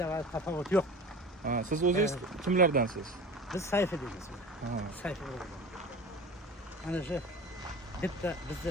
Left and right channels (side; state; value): both; normal; correlation 0.35